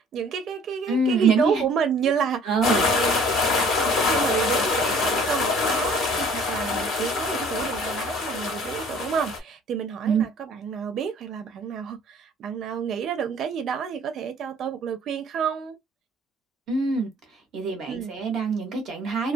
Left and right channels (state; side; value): normal; both; correlation 0.53